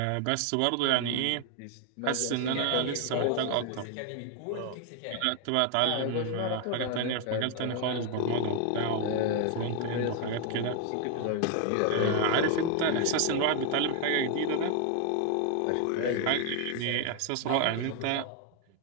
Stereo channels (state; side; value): different; both; correlation 0.00